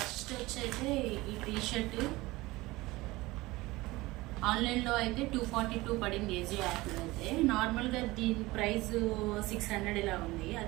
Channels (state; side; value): quieter; left; 20.4 dB